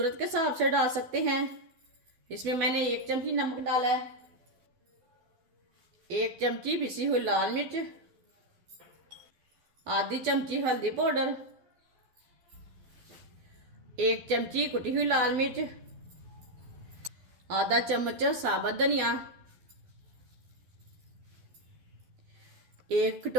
के हिसाब से डाल सकते हैं। इसमें मैंने एक चमची नमक डाला है। एक चमची पिसी हुई लाल मिर्च। आधी चमची हल्दी पाउडर। एक चमची कुटी हुई लाल मिर्च। आधा चम्मच साबुत धनिया। एक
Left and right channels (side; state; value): left; late; 12 ms